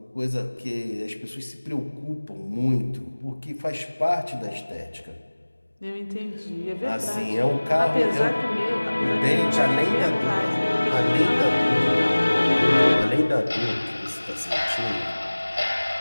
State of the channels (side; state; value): both; inverted; correlation -1.00